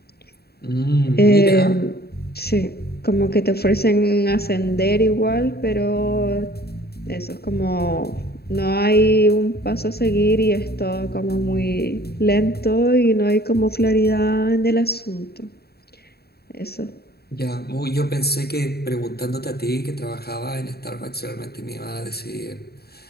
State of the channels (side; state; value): right; late; 0.46 ms